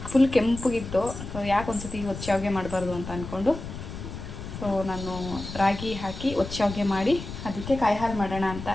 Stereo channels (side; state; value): left; noise; rumble, 10 dB below the sound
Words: ಫುಲ್ ಕೆಂಪಗಿತ್ತು. ಸೊ ಯಾಕೆ ಒಂದು ಸತಿ ಒಚ್ಚ ಮಾಡಬಾರ್ದು ಅಂತ ಅಂದ್ಕೊಂಡು ಸೊ ನಾನು ರಾಗಿ ಹಾಕಿ ಒಚ್ಚ ಮಾಡಿ ಅದಕ್ಕೆ ಕಾಯಿ ಹಾಲು ಮಾಡೋಣ ಅಂತ